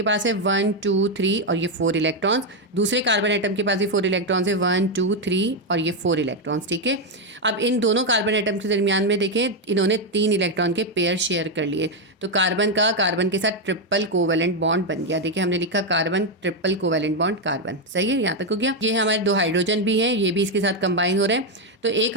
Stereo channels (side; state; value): both; normal; correlation 0.04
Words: पास है 1 2 3 और ये 4 इलेक्ट्रॉन्स। दूसरे कार्बन एटम के पास भी 4 इलेक्ट्रॉन्स है, 1 2 3 और ये 4 इलेक्ट्रॉन्स। ठीक है, अब इन दोनों कार्बन एटम के दरमियान में देखें, इन्होंने 3 इलेक्ट्रॉन के पेयर शेयर कर लिए, तो कार्बन का कार्बन के साथ ट्रिपल कोवैलेंट बॉन्ड बन गया। देखिए हमने लिखा carbon triple covalent bond carbon. सही है, यहाँ तक हो गया। ये हमारे 2 हाइड्रोजन भी हैं, ये भी इसके साथ कंबाइन हो रहे हैं। तो